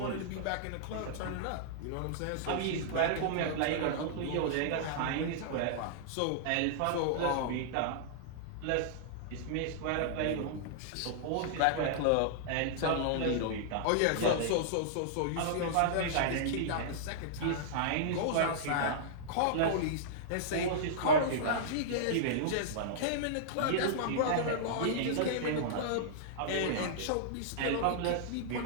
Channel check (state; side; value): different; both; correlation -0.02